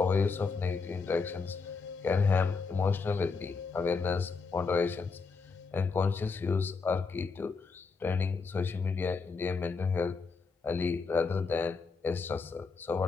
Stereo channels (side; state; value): right; quieter; 4.7 dB